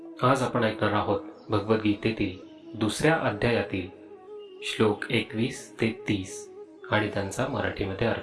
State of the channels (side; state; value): both; identical; correlation 1.00